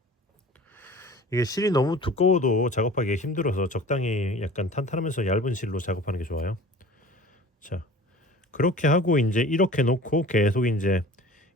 이게 실이 너무 두꺼워도 작업하기 힘들어서 적당히 약간 탄탄하면서 얇은 실로 작업하는 게 좋아요. 자 그렇게 하고 이제 이렇게 놓고 계속 이제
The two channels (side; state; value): both; normal; correlation 0.43